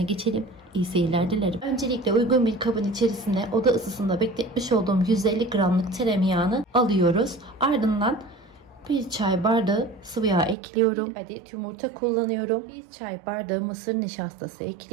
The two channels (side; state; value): left; drops out; at 10.6 s